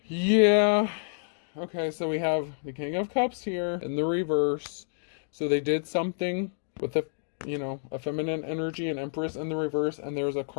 Yeah. Okay, so we have the King of Cups here in the reverse. So they did something with the, a feminine energy and Empress in the reverse, and there's a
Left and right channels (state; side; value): silent; right; digital silence